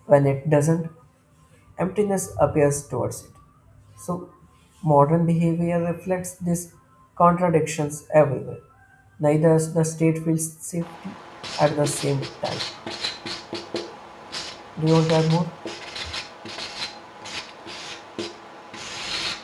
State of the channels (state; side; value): identical; both; correlation 1.00